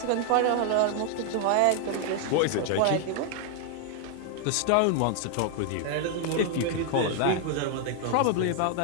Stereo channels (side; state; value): both; different; correlation 0.00